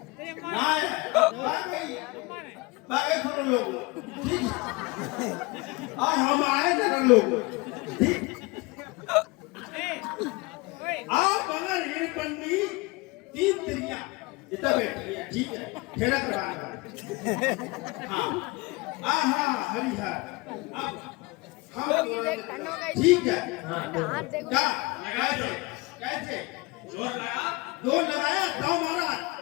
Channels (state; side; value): quieter; right; 24.7 dB